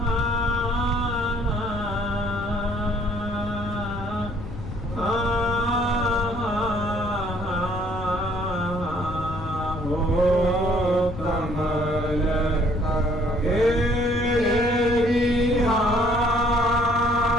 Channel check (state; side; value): noise; left; rumble, 10 dB below the sound